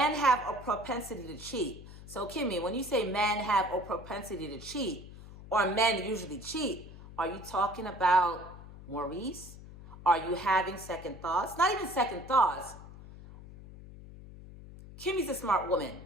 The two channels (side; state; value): left; noise; hum, 16 dB below the sound